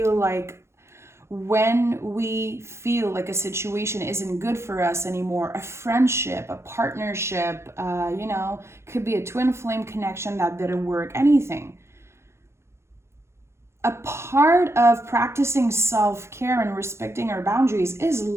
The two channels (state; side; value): late; left; 0.13 ms